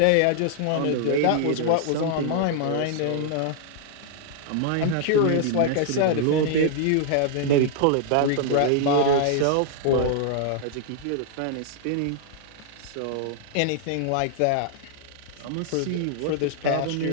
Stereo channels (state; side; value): different; both; correlation -0.01